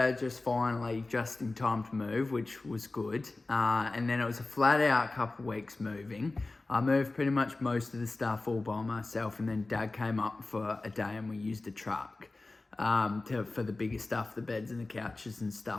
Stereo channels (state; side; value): quieter; right; 3.2 dB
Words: just finally, just in time to move, which was good. And then it was a flat out couple of weeks moving. I moved pretty much most of the stuff all by myself, and then Dad came up for a day and we used a truck for the bigger stuff, the beds and the couches and